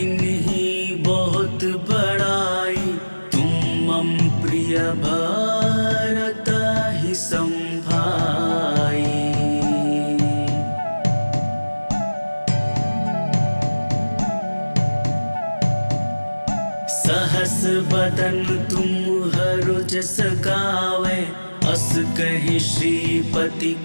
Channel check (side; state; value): both; inverted; correlation -1.00